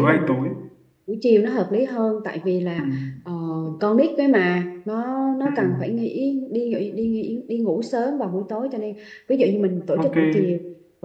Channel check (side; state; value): both; identical; correlation 1.00